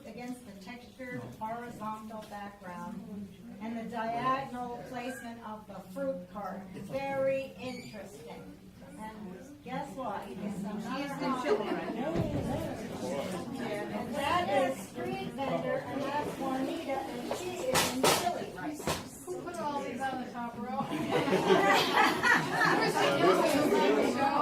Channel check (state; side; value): identical; both; correlation 1.00